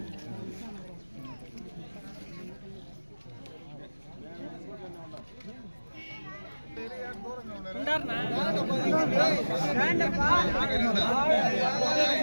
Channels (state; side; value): inverted; both; correlation -1.00